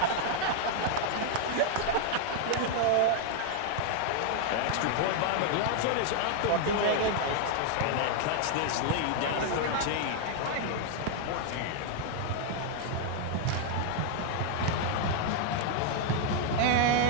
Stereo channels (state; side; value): different; both; correlation 0.00